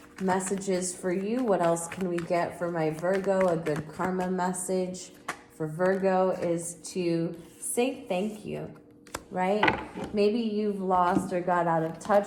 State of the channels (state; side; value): identical; both; correlation 1.00